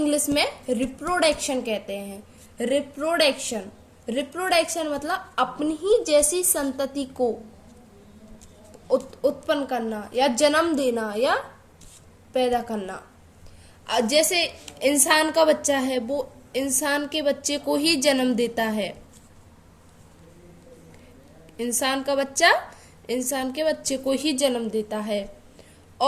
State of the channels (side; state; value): both; identical; correlation 1.00